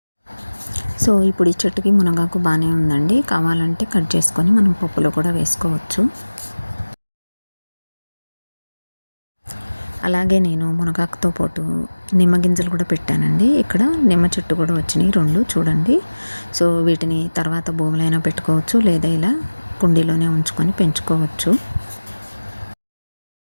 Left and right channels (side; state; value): both; inverted; correlation -1.00